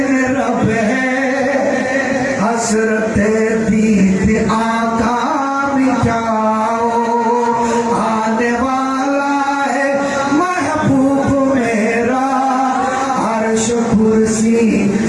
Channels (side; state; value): both; identical; correlation 1.00